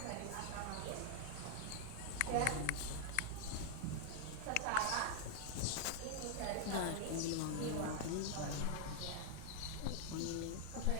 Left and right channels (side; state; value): both; different; correlation -0.01